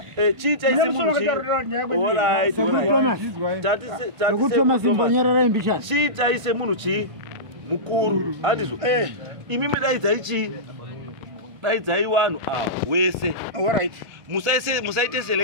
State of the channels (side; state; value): left; late; 1.5 ms